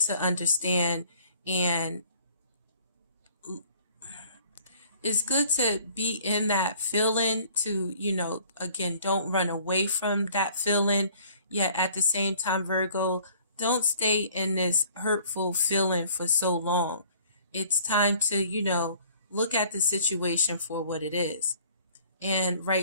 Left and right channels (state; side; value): inverted; both; correlation -0.54